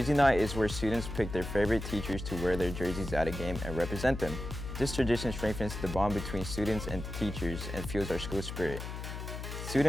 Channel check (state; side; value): noise; left; hum, 7 dB below the sound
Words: Night is where students pick their favorite teachers to wear their jerseys at a game and represent them. This tradition strengthens the bond between students and teachers and fuels our school spirit.